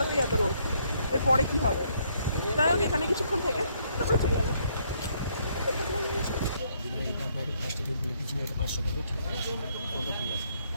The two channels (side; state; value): both; inverted; correlation -0.70